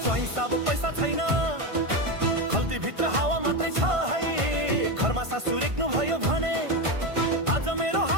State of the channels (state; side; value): late; left; 1.5 ms